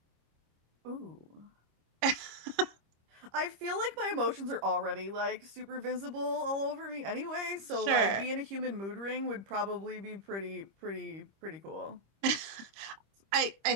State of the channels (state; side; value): late; left; 25 ms